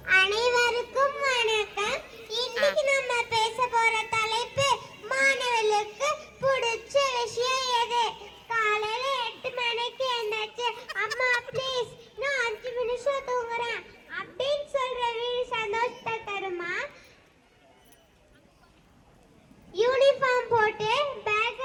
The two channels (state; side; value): identical; both; correlation 1.00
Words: அனைவருக்கும் வணக்கம். இன்னைக்கு நம்ம பேச போற தலைப்பு மாணவர்களுக்கு பிடிச்ச விஷயம் எது? காலையில 8 மணிக்கு எழுந்தாச்சு, அம்மா ப்ளீஸ் நான் 5 நிமிஷம் தூங்குறேன் அப்படின்னு சொல்ற வீடு சந்தோஷத்தை தருமா? யூனிஃபார்ம் போட்டு